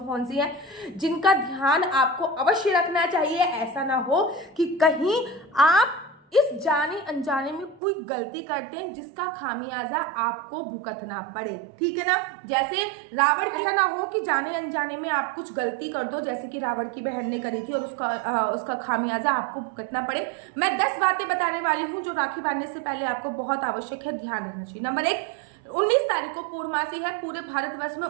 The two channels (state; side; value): drops out; left; at 7.8 s